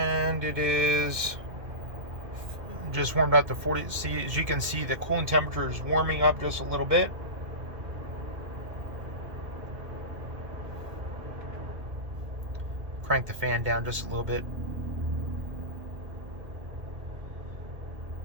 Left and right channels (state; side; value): late; left; 2.1 ms